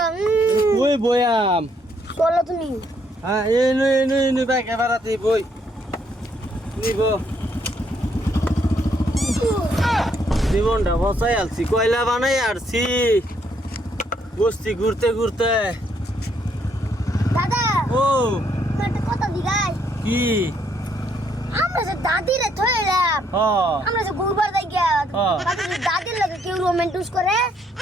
কই বয়াম চলো তুমি হ্যাঁ এই বাইক এবারাতে বই নিব জীবনটা বসাই আলছি কয়লা বানাই আরছি বস্তি ঘুরতে ঘুরতে দাদা ও একটা কথা দিগাই কি আমরা যে দাদিরে থইলাম আমরা যে গুরবার যাই গিয়া দাদির লাগে কেউ রোমান্টিস করে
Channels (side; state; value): both; normal; correlation 0.71